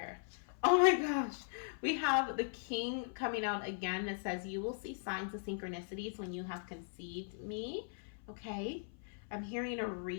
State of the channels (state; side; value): silent; right; 52 dB below the other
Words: Oh my gosh. We have the King coming out again that says, you will see signs of synchronicities when you have conceived me. Okay. I'm hearing a